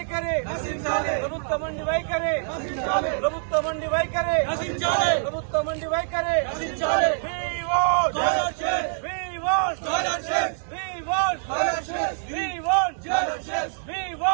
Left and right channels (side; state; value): left; silent; digital silence